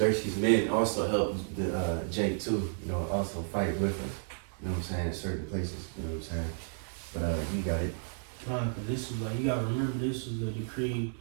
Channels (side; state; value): left; silent; digital silence